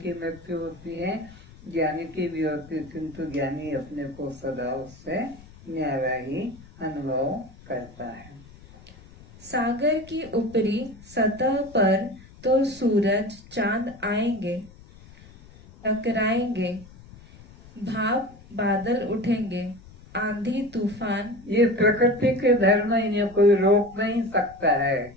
की मृत्यु होती है, ज्ञानी की भी होती है, किंतु ज्ञानी अपने को सदा उससे न्यारा ही अनुभव करता है। सागर की ऊपरी सतह पर तो सूरज चांद आएंगे, टकराएंगे, भाप बादल उठेंगे, आंधी तूफान। ये प्रकृति के धर्म, इन्हें कोई रोक नहीं सकता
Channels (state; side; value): noise; left; rumble, 21 dB below the sound